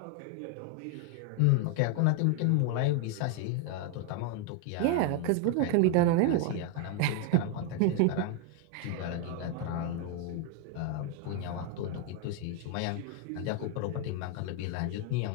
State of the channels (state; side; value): different; both; correlation 0.01